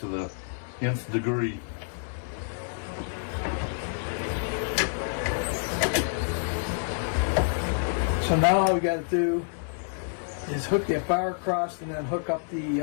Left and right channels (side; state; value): right; silent; digital silence